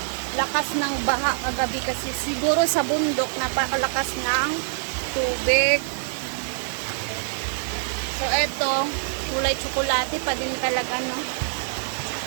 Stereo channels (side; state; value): left; silent; 62 dB below the other